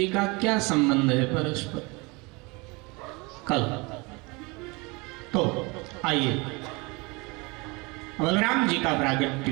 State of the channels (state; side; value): quieter; left; 26.8 dB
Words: का क्या संबंध है परस्पर, कल। तो आइए, बलराम जी का प्रागट्य